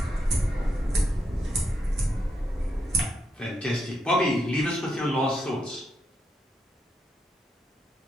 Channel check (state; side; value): normal; both; correlation 0.82